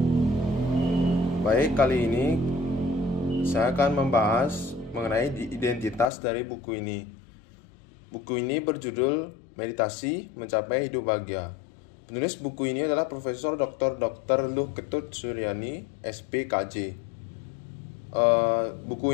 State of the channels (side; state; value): right; drops out; at 6.1 s